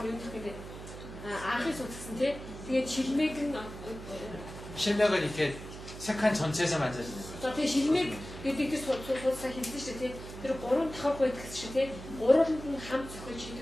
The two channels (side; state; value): right; noise; hum, 12 dB below the sound